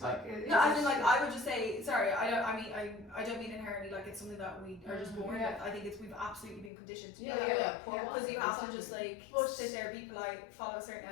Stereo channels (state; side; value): drops out; right; at 6.7 s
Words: No, as in, like, I would just say, sorry, I don't mean inherently like it's something that we are just born with. I think it's we've absolutely been conditioned to do that. Because you have to just like sit there, be polite, follow a certain